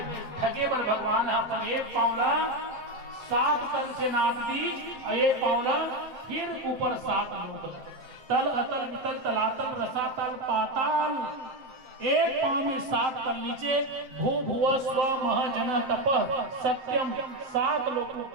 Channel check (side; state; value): left; late; 7.6 ms